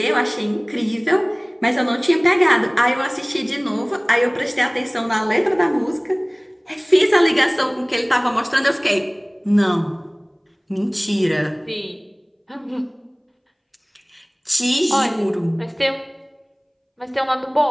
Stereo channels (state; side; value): identical; both; correlation 1.00